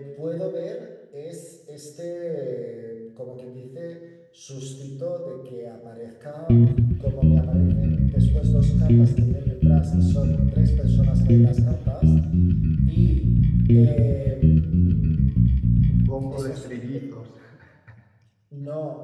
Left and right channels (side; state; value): both; identical; correlation 1.00